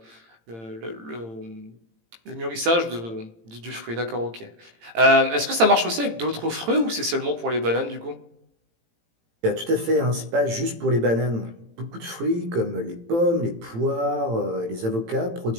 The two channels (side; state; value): left; late; 18 ms